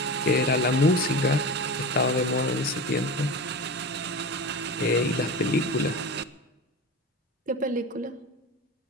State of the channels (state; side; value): normal; both; correlation 0.28